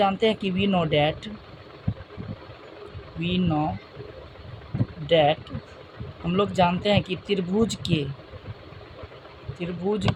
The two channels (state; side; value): identical; both; correlation 1.00